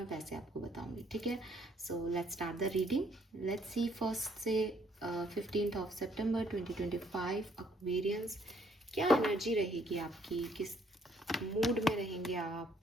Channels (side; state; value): both; normal; correlation 0.66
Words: वैसे आपको बताऊंगी, ठीक है। So let's start the reading. Let's see first से 15th ऑफ सितंबर 2025 एक्वेरियंस, क्या एनर्जी रहेगी आपकी, किस मूड में रहेंगे आप,